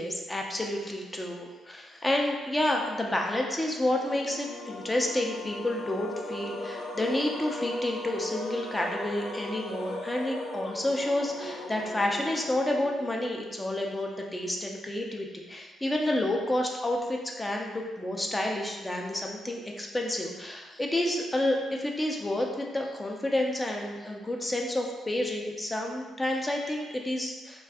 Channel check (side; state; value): both; normal; correlation 0.87